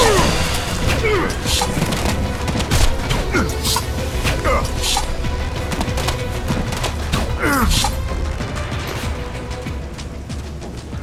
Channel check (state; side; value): identical; both; correlation 1.00